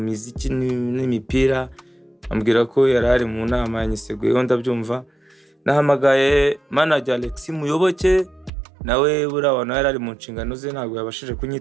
muziki n'imipira, ambwira ko yarari mu nama yanyiseguyeho ndabyumva. Nahamagaye manager Alex Muyoboke, nawe burabona yarari mu nshingano ze ntabwo yabashije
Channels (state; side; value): drops out; left; at 8.5 s